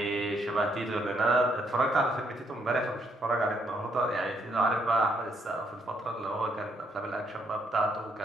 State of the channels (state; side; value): normal; both; correlation 0.73